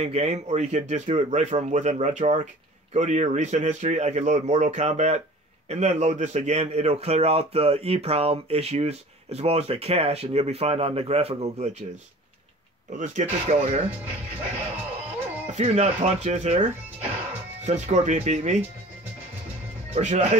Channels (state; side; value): normal; both; correlation 0.44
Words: game, or you could just do it right from within RetroArch. Go to your recent history. I can load Mortal Kombat, and then load this again. It'll clear out the EEPROM issues as well as the cache, and you'll be fine on the graphical glitches. But let's get this going here. A few nut punches here, since Scorpion beat me. Or should